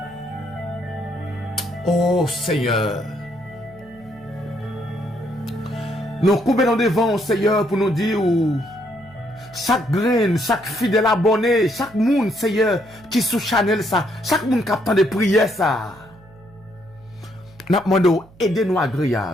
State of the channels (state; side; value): noise; right; hum, 25 dB below the sound